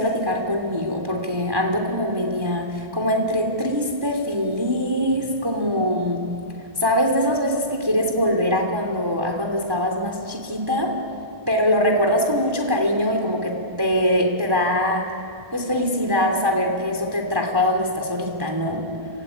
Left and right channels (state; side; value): late; left; 1.1 ms